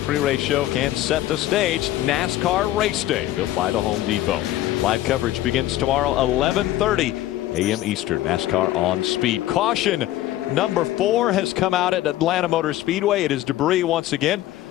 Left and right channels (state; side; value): quieter; right; 14.5 dB